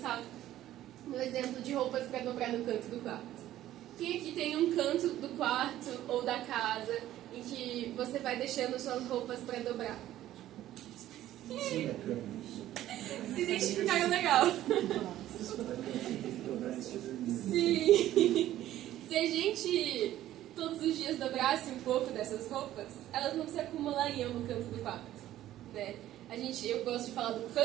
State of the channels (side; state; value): left; quieter; 13.4 dB